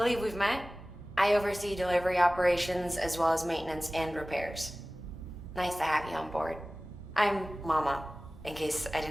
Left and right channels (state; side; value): normal; both; correlation 0.97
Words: we've met. I oversee delivery operations as well as maintenance and repairs. Nice to have you on board. I'm Mama, in case I